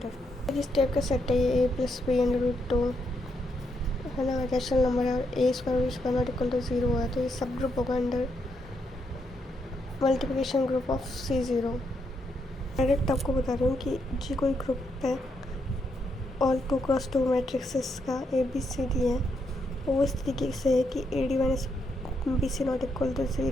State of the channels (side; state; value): both; normal; correlation 0.78